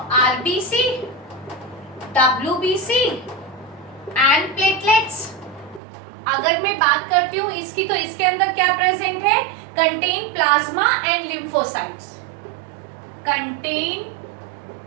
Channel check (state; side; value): drops out; left; at 5.8 s